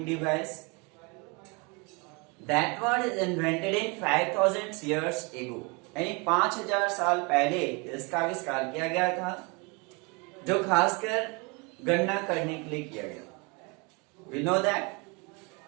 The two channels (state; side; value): quieter; left; 29.9 dB